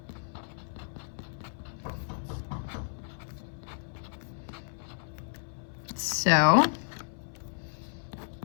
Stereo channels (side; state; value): right; silent; 56 dB below the other